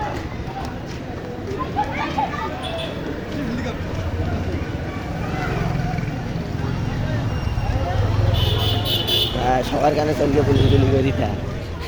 সবার কানে চলকে পুলিশ গুলি করে দিতা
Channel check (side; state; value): both; identical; correlation 1.00